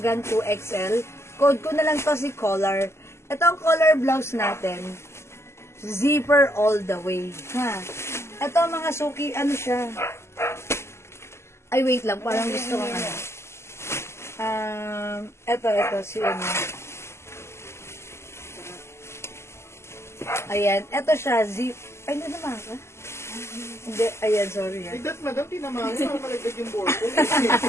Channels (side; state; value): right; late; 0.13 ms